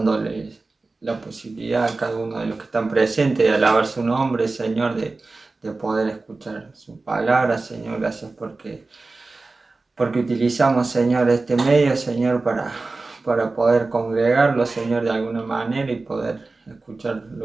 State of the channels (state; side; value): quieter; left; 3.5 dB